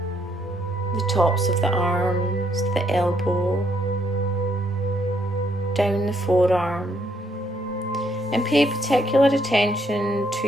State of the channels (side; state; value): both; normal; correlation 0.72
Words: the tops of the arms, the elbow, down the forearm, and pay particular attention to